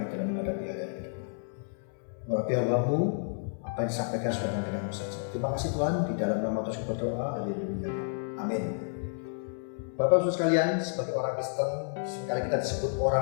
dalam menghadapi hari-hari ke depan. Urapi hamba-Mu, apa yang disampaikan sesuai dengan firman-Mu saja. Terima kasih Tuhan, di dalam nama Tuhan kami berdoa, haleluya, amin. Bapak Ibu sekalian, sebagai orang Kristen, seringkali kita disebut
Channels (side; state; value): right; silent; 57 dB below the other